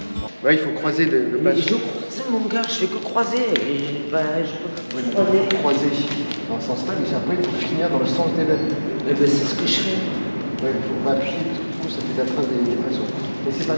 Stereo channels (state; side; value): inverted; both; correlation -1.00